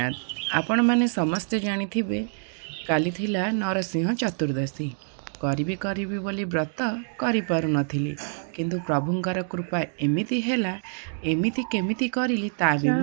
आपण माने समस्ते जानिथिबे काली थिला नरसिंह चतुर्दशी। करिबी बोली व्रत करि पारु नथिली, किंतु प्रभुंकर कृपा एमिति हेला, एमिति केमिति करिली ता भी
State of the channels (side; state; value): left; silent; 61 dB below the other